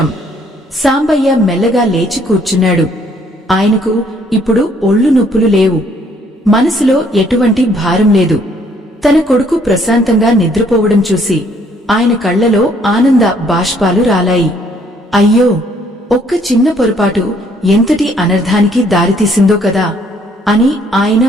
సాంబయ్య మెల్లగా లేచి కూర్చున్నాడు. ఆయనకు ఇప్పుడు ఒళ్ళు నొప్పులు లేవు. మనసులో ఎటువంటి భారం లేదు. తన కొడుకు ప్రశాంతంగా నిద్రపోవడం చూసి ఆయన కళ్లలో ఆనంద బాష్పాలు రాలాయి. అయ్యో, ఒక్క చిన్న పొరపాటు ఎంతటి అనర్థానికి దారితీసిందో కదా అని ఆయన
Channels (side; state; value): both; normal; correlation 0.64